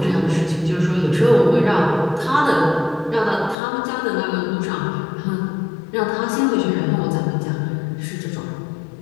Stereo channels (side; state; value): right; drops out; at 3.6 s